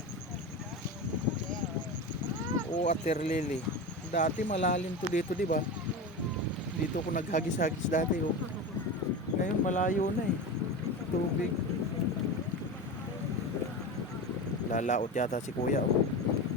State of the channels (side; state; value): both; normal; correlation 0.25